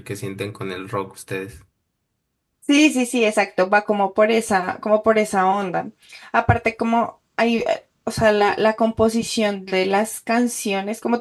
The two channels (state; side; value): identical; both; correlation 1.00